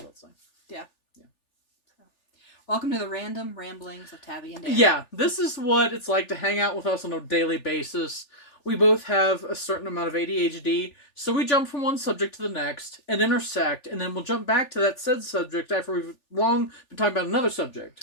saying. Yeah. Yeah. So, welcome to the random ramblings of Tabby and Dani. Yeah. This is what it's like to hang out with us on a daily basis. We both have a certain amount of ADHD, so we jump from one subject to the next and intersect, and then we'll jump back to that said subject after we've long been talking about another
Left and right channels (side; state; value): right; late; 3.4 ms